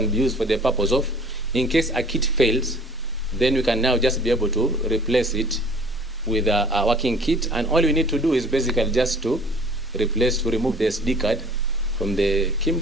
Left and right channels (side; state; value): both; normal; correlation 0.50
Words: be used for the purpose of, in case a kit fails, then we can now just be able to replace it with a working kit, and all we need to do is basically just to remove the SD card from the